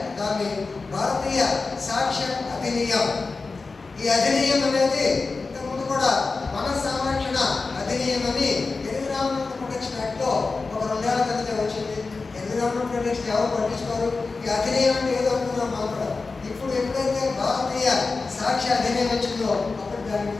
దాన్ని భారతీయ సాక్ష్య అధినియం. ఈ అధినియం అనేది ఇంతకుముందు కూడా వన సంరక్షణ అధినియం అని ఎన్విరాన్మెంట్ ప్రొటెక్షన్ యాక్ట్లో ఒక 2 ఏళ్ల క్రితం వచ్చింది. ఎన్విరాన్మెంట్ ప్రొటెక్షన్ ఎవరు పట్టించుకోరు. ఈ అధినియం అంటే ఏదో అనుకున్నాం మనం కూడా. ఇప్పుడు ఎప్పుడైతే భారతీయ సాక్ష్య అధినియం వచ్చిందో అప్పుడు దాని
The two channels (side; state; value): right; quieter; 4.0 dB